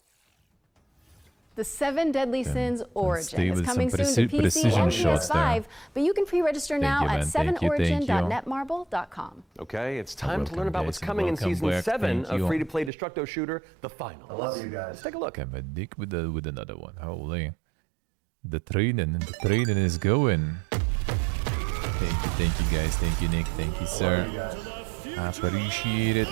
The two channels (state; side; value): drops out; left; at 12.9 s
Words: The Seven Deadly Sins Origin is coming soon to PC precision and shots PS5, there. but you can pre-register now you, at man. Thank you. 7origin.netmarble.com. Okay, it's time to learn about what's guys, coming in welcome Season back. 7 Thank of you. free-to-play Destructo Shooter, The Final. I love you guys. Let's take a look. I'm a dick with another one. Holy. The training is going. Thank you guys. Thank you, Nick. Thank you, sir. I appreciate it.